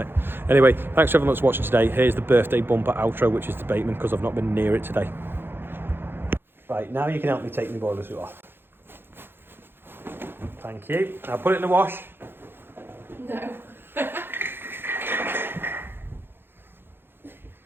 it. Anyway, thanks everyone that's watching today. Here's the birthday bumper outro, which is the Bateman, because I've not been near it today. Right, now you can help me take my boiler suit off. Thank you. Now put it in the wash. No.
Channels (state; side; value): late; left; 0.10 ms